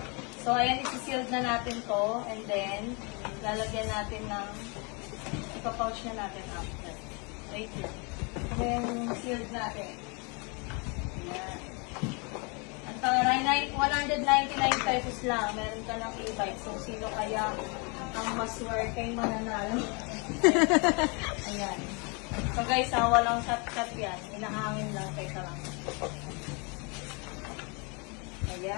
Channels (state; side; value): quieter; right; 31.8 dB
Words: So, ayan, isi-sealed na natin to. And then, lalagyan natin ng ipapouch na natin after. Wait lang. Ayan, sealed natin. Ayan. Ang taray, 199 pesos lang. Meron ka ng e-bike. So, sino kaya ang maswerte mananalo? Ayan. So guys, walang cut-cut yan. Inahangin lang. Teka lang.